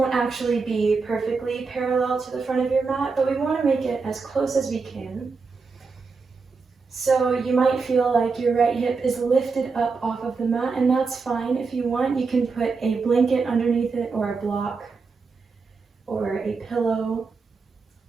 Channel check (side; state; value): left; quieter; 4.6 dB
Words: actually be perfectly parallel to the front of your mat, but we want to make it as close as we can. So you might feel like your right hip is lifted up off of the mat, and that's fine. If you want, you can put a blanket underneath it or a block or a pillow.